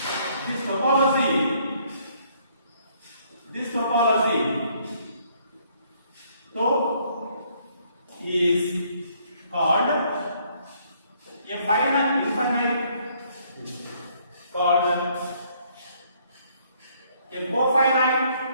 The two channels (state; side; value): inverted; both; correlation -0.66